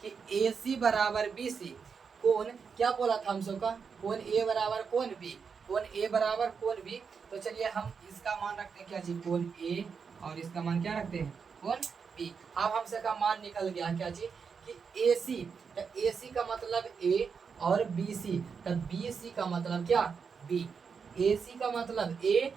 कि ए सी बराबर बी सी, कौन क्या बोला था हम सब का, कौन ए बराबर कौन बी, कौन ए बराबर कौन बी। तो चलिए हम इसका मान रखते हैं क्या जी, कौन ए, और इसका मान क्या रखते हैं, कौन बी। अब हम सब का मान निकल गया क्या जी, कि ए सी, तो ए सी का मतलब ए और बी सी, तो बी सी का मतलब क्या बी, ए सी का मतलब ए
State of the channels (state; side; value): quieter; left; 5.9 dB